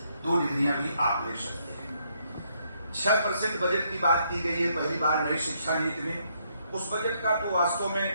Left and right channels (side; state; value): both; inverted; correlation -0.73